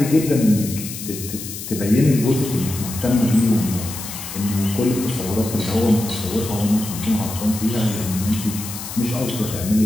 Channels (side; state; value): left; noise; hiss, 9 dB below the sound